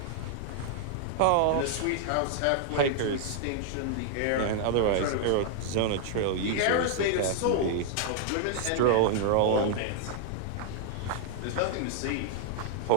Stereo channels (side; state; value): both; different; correlation -0.01